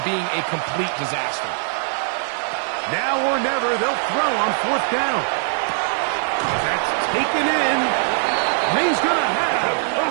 being a complete disaster. Now or never, they'll throw on fourth down. That's taken in. And he's going to have the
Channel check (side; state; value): left; silent; 59 dB below the other